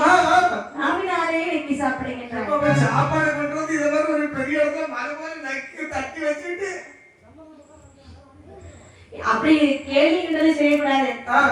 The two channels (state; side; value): identical; both; correlation 1.00